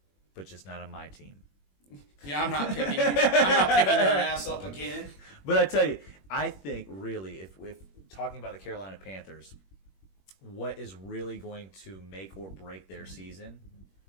but just not on my team. Yeah, I'm not picking you. I'm not picking your ass up again. But I tell you, I think really, if talking about the Carolina Panthers, what is really going to make or break their season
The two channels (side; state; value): right; late; 21 ms